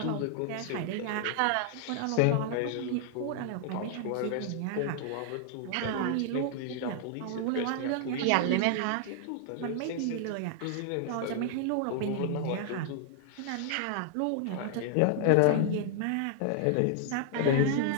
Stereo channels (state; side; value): different; both; correlation 0.00